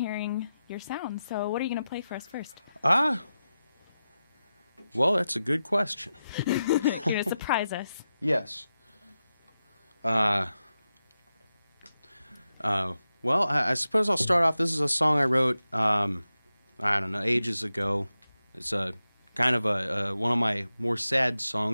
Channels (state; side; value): inverted; both; correlation -0.91